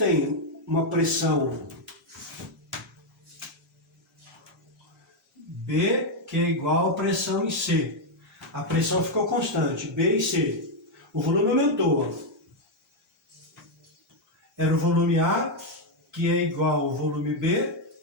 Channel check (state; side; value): normal; both; correlation 0.02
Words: uma pressão B, que é igual a pressão em C. A pressão ficou constante, B e C. O volume aumentou. Era o volume A, que é igual ao volume B,